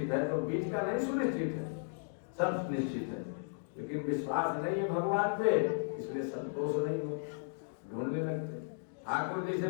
है, तो बीच का नहीं सुनिश्चित है, सब निश्चित है। लेकिन विश्वास नहीं है भगवान पे, इसलिए संतोष नहीं हो, ढूंढने लगते। ठाकुर जी से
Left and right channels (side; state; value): right; silent; digital silence